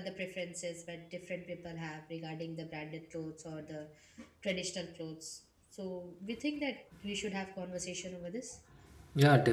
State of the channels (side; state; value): both; identical; correlation 1.00